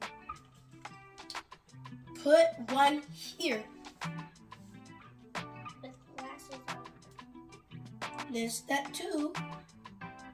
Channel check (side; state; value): both; identical; correlation 1.00